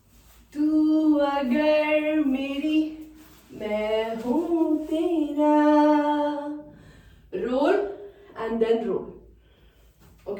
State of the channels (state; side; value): identical; both; correlation 1.00